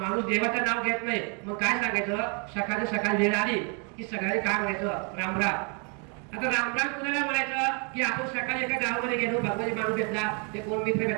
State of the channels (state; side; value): quieter; left; 36.3 dB